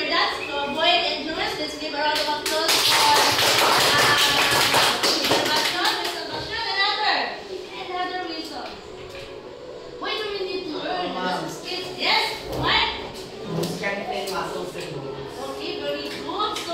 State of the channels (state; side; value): identical; both; correlation 1.00